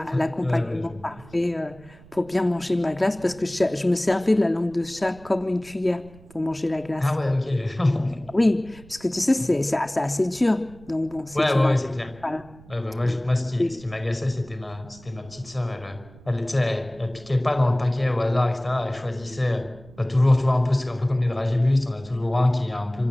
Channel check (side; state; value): right; noise; rumble, 22 dB below the sound